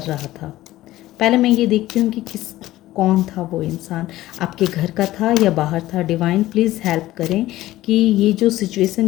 रहा था। पहले मैं ये देखती हूँ कि कौन था वो इंसान, आपके घर का था या बाहर था। डिवाइन प्लीज़ हेल्प करें कि ये जो सिचुएशन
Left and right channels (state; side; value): quieter; right; 15.9 dB